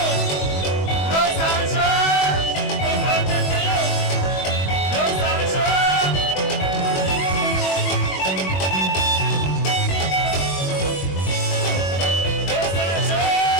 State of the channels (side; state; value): right; late; 21 ms